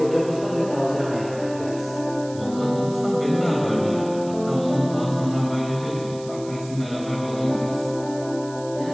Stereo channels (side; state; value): right; noise; hiss, 19 dB below the sound